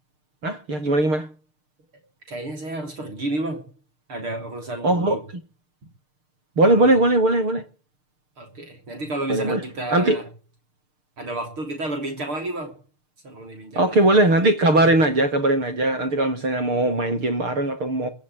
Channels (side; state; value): left; late; 6.6 ms